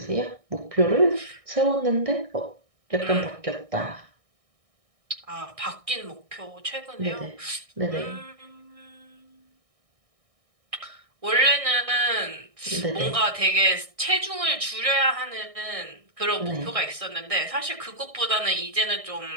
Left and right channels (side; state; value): left; late; 1.6 ms